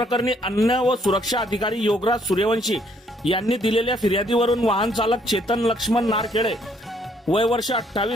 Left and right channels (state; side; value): normal; both; correlation 0.67